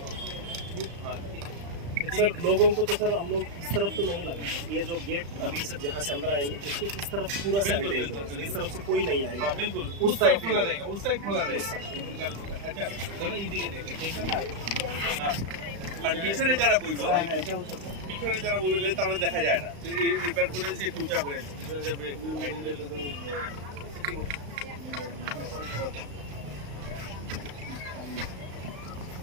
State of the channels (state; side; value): late; left; 35 ms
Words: हाँ सर लोगों को तो सर हम लोग इस तरफ तो नहीं लगा ये जो गेट अभी सर जहाँ से अंदर आएंगे उसके इस तरफ पूरा सैनिटाइज होगा इस तरफ से कोई नहीं आएगा बिल्कुल उस साइड खुला रहेगा उस साइड खुला रहेगा अच्छा चलो इजी के देखें हाँ আর পিছনে যারা বইব পিছনে যারা বইবে তারা দেখা যায় না তো এই রিপেয়ার করে সে টুচা করে পিছনে যা ব্রেক আইডিলে তো